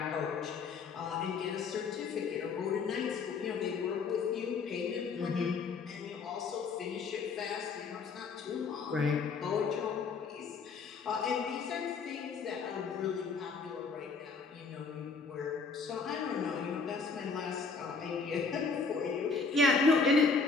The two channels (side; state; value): right; quieter; 4.7 dB